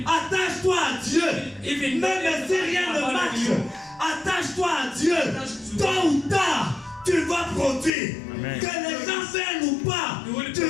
attache-toi à Dieu. even Même si rien ne marche, attache-toi à Dieu. Tôt ou tard, tu vas produire. Amen. Que les gens viennent ou pas, tu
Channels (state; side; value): drops out; right; at 7.9 s